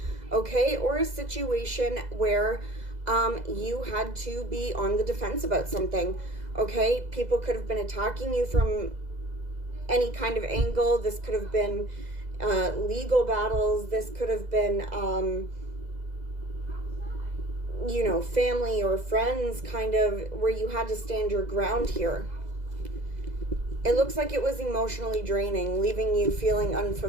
okay? Or a situation where you had to be on the defense about something, okay? People could have been attacking you from any kind of angle. This could have been legal battles. This could have been, you know, family or friends, kind of where you had to stand your ground here. It looks like it was emotionally draining, leaving you feeling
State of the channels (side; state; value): left; late; 2.0 ms